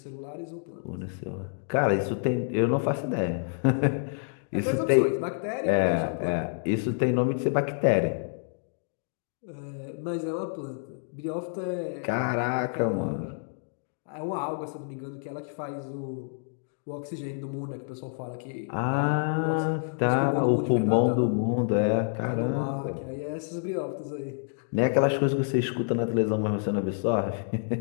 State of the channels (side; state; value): right; silent; digital silence